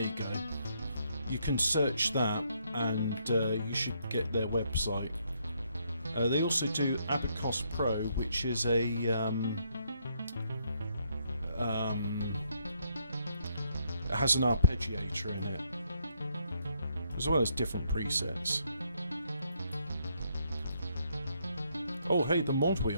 you go. You can search that and you should get their website. They also do Abacus Pro, which is a it has an arpeggiator in it, as well as different presets. Oh hey, the mod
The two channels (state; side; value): inverted; both; correlation -0.73